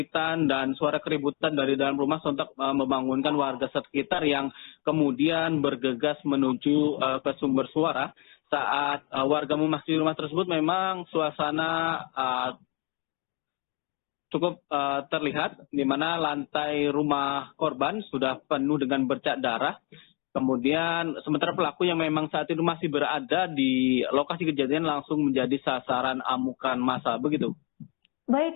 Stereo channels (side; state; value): right; quieter; 32.6 dB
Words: dan suara keributan dari dalam rumah sontak membangunkan warga sekitar yang kemudian bergegas menuju ke sumber suara. Saat warga memasuki rumah tersebut, memang suasana cukup terlihat, di mana lantai rumah korban sudah penuh dengan bercak darah. Kemudian sementara pelaku yang memang saat itu masih berada di lokasi kejadian langsung menjadi sasaran amukan massa, begitu. Baik,